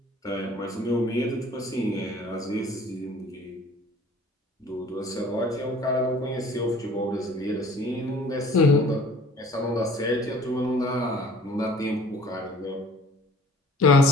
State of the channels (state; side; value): normal; both; correlation 0.50